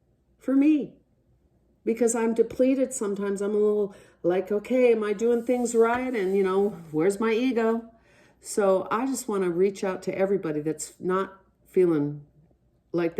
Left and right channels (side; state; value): both; identical; correlation 1.00